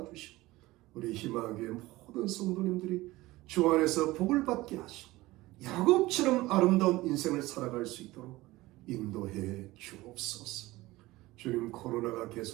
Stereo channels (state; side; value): quieter; left; 18.9 dB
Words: 우리 희망교회 모든 성도님들이 주 안에서 복을 받게 하시고 야곱처럼 아름다운 인생을 살아갈 수 있도록 인도해 주옵소서. 주님, 코로나가